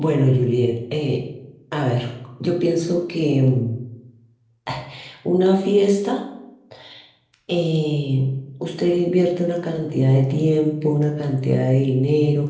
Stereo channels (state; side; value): identical; both; correlation 1.00